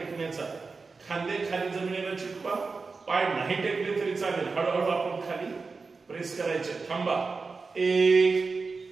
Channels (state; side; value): quieter; left; 4.3 dB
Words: खांदे खाली जमिनीला चिटकवा. पाय नाही टेकले तरी चालेल. हळूहळू आपण खाली प्रेस करायचे. थांबा.